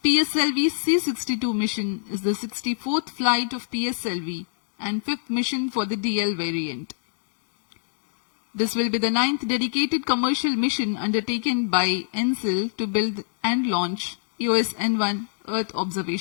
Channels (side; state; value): right; silent; digital silence